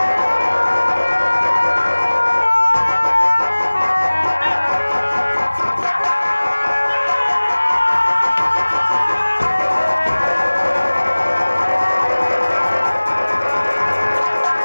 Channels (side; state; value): both; inverted; correlation -1.00